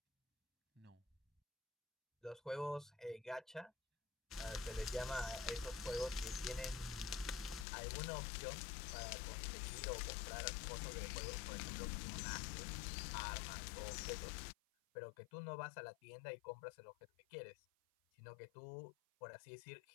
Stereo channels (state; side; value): drops out; right; at 7.7 s